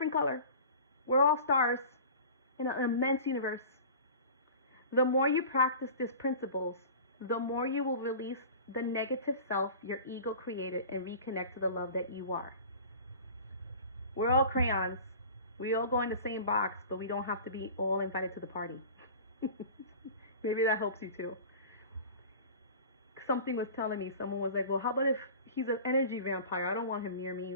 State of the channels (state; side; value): inverted; both; correlation -0.38